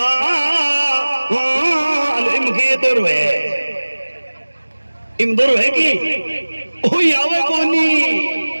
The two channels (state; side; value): inverted; both; correlation -1.00